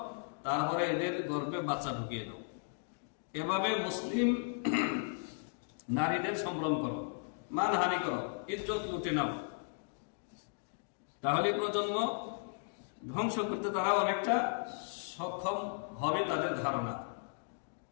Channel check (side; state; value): right; silent; digital silence